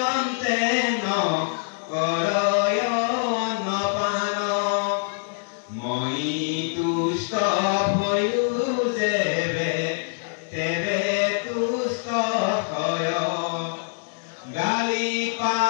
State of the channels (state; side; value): silent; right; digital silence